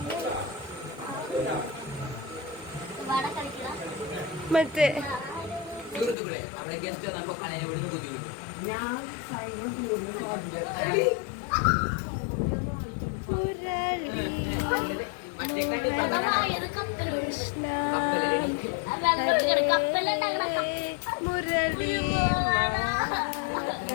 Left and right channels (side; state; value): right; drops out; at 6.2 s